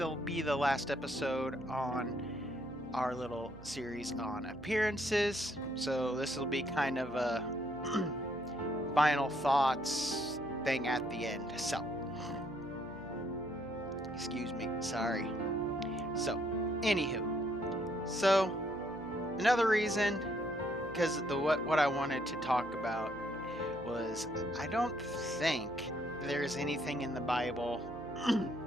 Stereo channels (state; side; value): noise; right; hum, 16 dB below the sound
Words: be the last episode on our little series on appearances. So this will be kind of a final thoughts thing at the end. So, excuse me, sorry. So, anywho, so another reason, because what I wanted to talk about was I don't think there's anything in the Bible